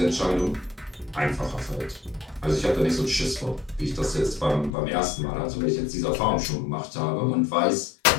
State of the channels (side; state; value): right; drops out; at 4.7 s